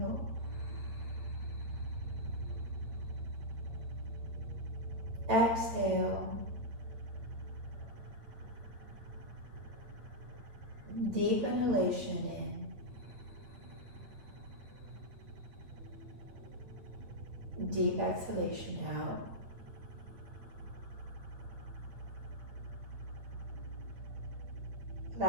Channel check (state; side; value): late; left; 8.9 ms